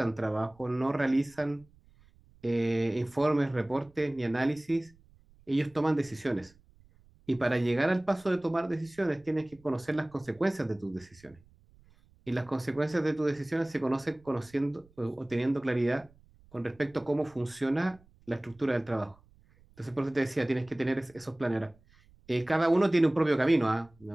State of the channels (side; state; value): right; noise; rumble, 29 dB below the sound